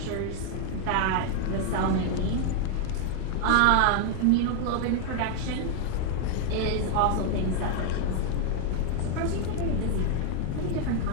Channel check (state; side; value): different; both; correlation 0.00